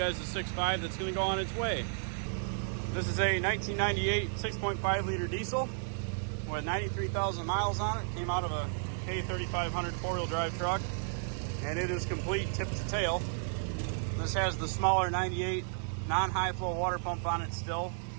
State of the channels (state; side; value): silent; left; digital silence